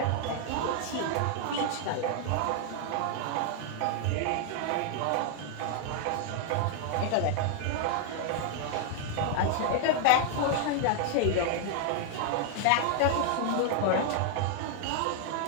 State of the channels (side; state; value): both; different; correlation 0.00